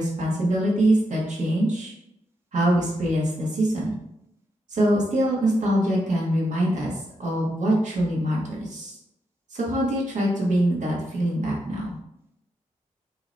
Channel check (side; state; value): both; normal; correlation 0.83